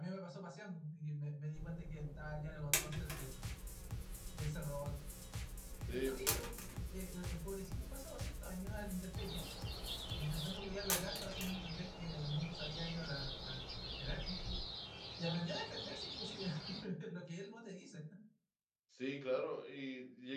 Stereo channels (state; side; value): identical; both; correlation 1.00